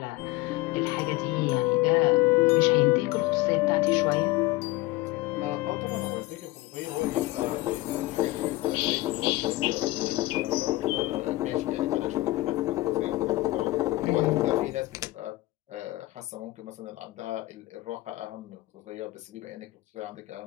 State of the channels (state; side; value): quieter; right; 19.2 dB